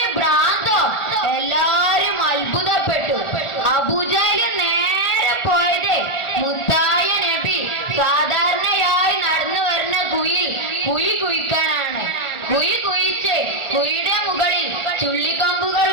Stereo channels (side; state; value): right; late; 1.4 ms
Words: ഭ്രാന്തോ? എല്ലാരും അത്ഭുതപ്പെട്ടു. അബൂജഹല് നേരെ പോയത് മുത്തായ നബി സാധാരണയായി നടന്നു വരുന്ന കുഴി കുഴിക്കാനാണ്. കുഴി കുഴിച്ച് കുഴിയുടെ മുകളിൽ ചുള്ളിക്കമ്പുകൾ